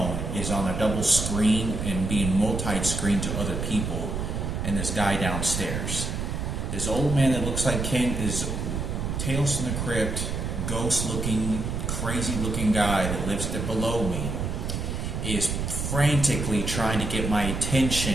is on a double screen and being multi-screen to other people, and this guy downstairs. This old man that looks like Ken is Tales from the Crypt, ghost-looking, crazy-looking guy that lives below me, is frantically trying to get my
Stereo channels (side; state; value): right; noise; rumble, 3 dB below the sound